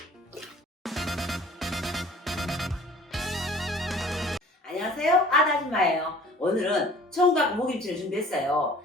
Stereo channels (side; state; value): both; normal; correlation 0.49